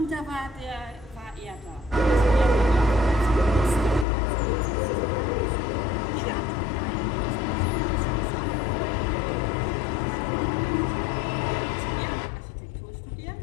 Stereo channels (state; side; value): drops out; right; at 4.0 s